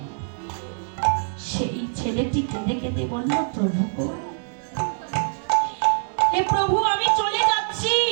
সেই ছেলেটি কেঁদে কেঁদে বলল, প্রভু গো, হে প্রভু আমি চলে যাচ্ছি,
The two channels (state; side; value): silent; left; digital silence